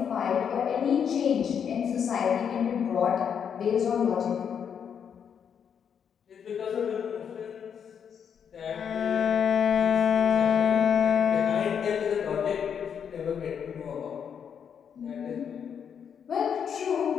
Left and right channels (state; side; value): quieter; right; 7.7 dB